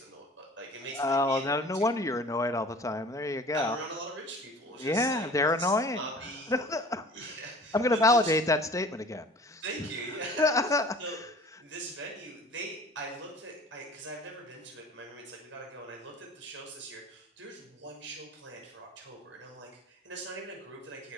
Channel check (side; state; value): both; normal; correlation 0.45